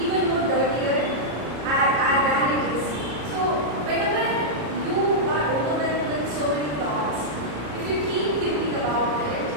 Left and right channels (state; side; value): late; left; 33 ms